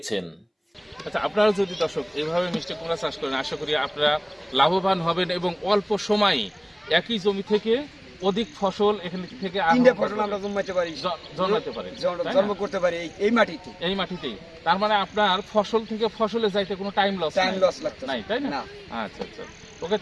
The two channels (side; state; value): both; identical; correlation 1.00